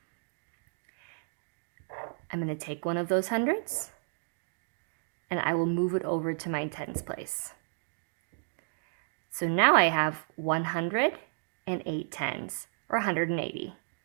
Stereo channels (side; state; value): left; silent; digital silence